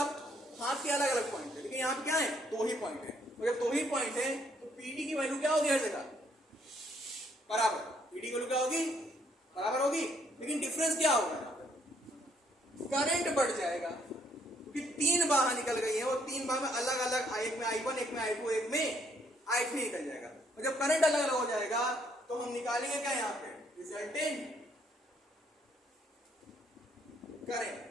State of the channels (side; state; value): both; normal; correlation 0.68